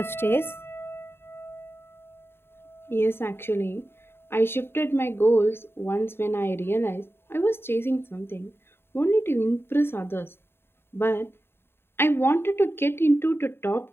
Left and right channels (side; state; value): right; late; 0.11 ms